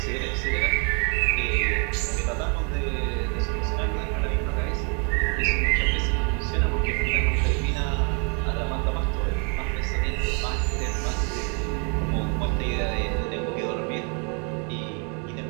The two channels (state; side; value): quieter; left; 37.3 dB